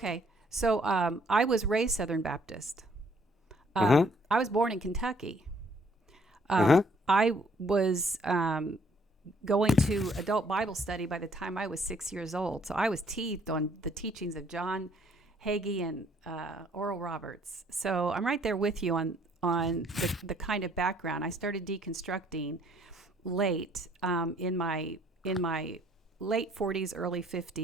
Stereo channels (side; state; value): both; normal; correlation 0.64